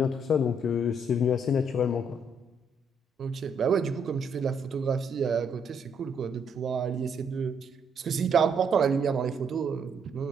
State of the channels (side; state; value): both; normal; correlation 0.71